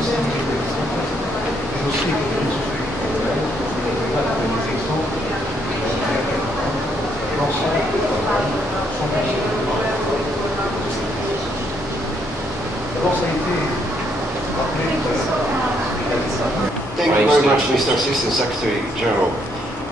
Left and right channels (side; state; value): both; normal; correlation 0.72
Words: Thank you very much, Mr. Assistant Secretary General,